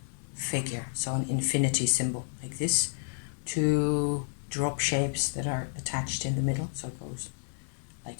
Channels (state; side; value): silent; right; digital silence